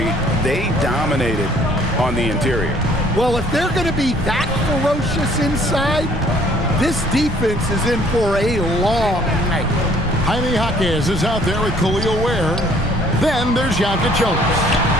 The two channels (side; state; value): both; normal; correlation 0.59